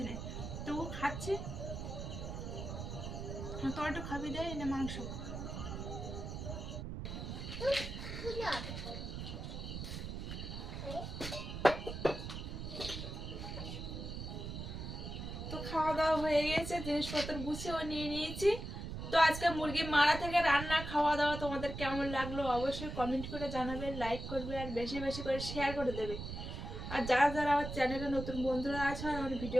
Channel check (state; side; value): noise; right; rumble, 6 dB below the sound